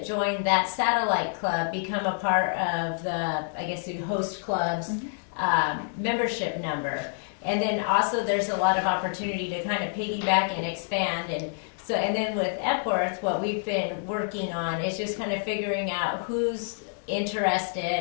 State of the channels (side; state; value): right; silent; digital silence